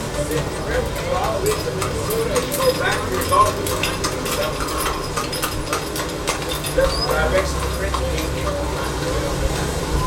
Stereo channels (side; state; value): both; identical; correlation 1.00